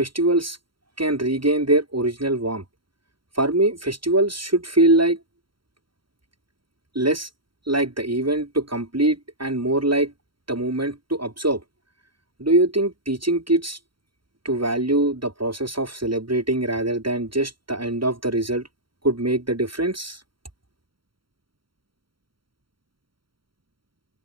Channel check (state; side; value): late; left; 0.73 ms